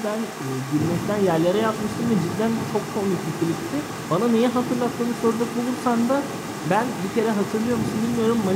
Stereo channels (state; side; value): identical; both; correlation 1.00